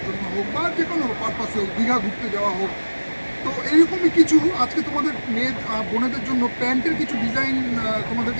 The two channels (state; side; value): inverted; both; correlation -1.00